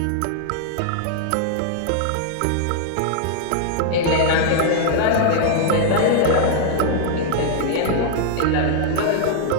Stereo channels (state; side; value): different; both; correlation -0.01